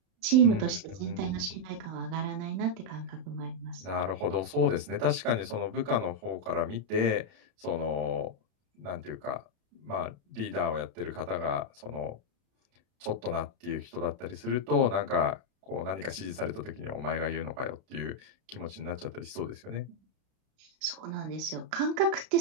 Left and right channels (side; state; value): left; late; 32 ms